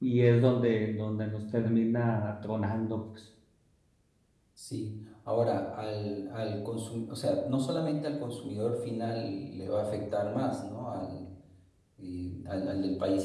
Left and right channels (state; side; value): identical; both; correlation 1.00